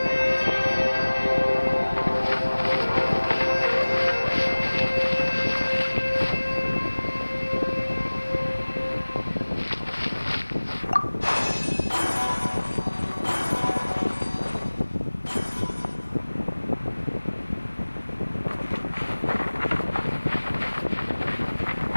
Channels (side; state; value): both; inverted; correlation -1.00